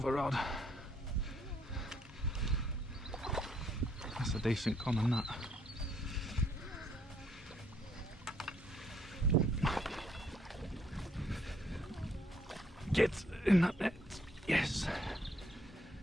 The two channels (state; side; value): normal; both; correlation 0.69